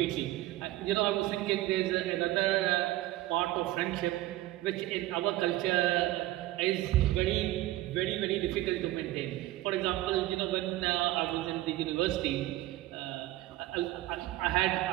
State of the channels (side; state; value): left; quieter; 16.4 dB